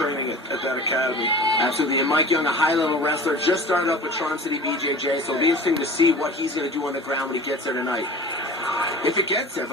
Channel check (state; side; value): normal; both; correlation 0.38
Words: at that academy. Absolutely, and Mike Young, a high-level wrestler, just started up with Charm City BJJ, so it'll be interesting to see what he's going to do on the ground when he gets there tonight. If it gets there,